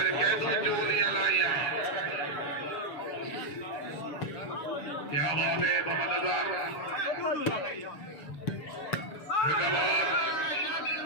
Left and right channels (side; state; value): right; late; 6.8 ms